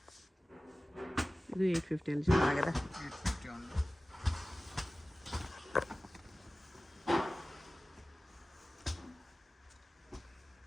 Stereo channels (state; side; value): normal; both; correlation 0.97